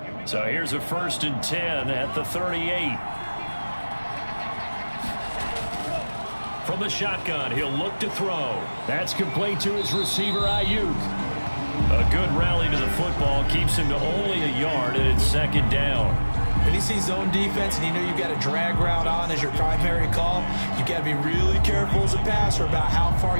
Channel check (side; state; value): both; inverted; correlation -1.00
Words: So here's a 1st and 10 at the 38. From the shotgun, he'll look to throw. That's complete to his receiver, Ayuk. A good rally to the football keeps him to only a yard, and it's 2nd down. When you see zone defense and you know you've got a drag route on as your primary call, you've got to be really careful as a passer about how far